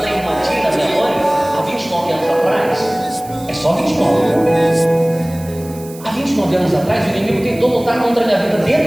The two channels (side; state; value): right; noise; hiss, 19 dB below the sound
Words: irmã Tina, minha mãe, há 29 anos atrás, é só 29. Há 29 anos atrás, o inimigo tentou lutar contra a minha vida